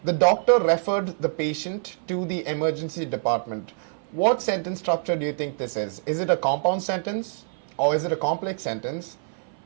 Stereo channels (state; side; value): silent; left; 55 dB below the other